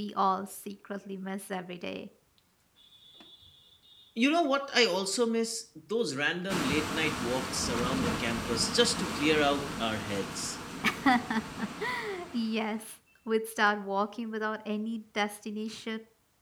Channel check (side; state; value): both; identical; correlation 1.00